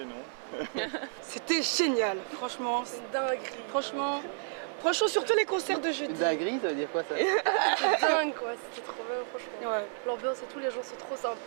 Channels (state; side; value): silent; left; 57 dB below the other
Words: noms. C'était génial, franchement. C'est une dinguerie. Franchement, surtout les concerts de jeudi. Une dinguerie, ça veut dire quoi ça? C'était dingue quoi, c'était trop bien franchement. Ouais. L'ambiance et tout, les gens sont trop